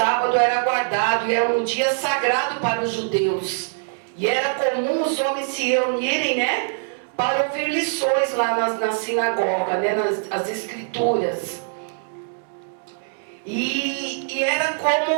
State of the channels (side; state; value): left; silent; digital silence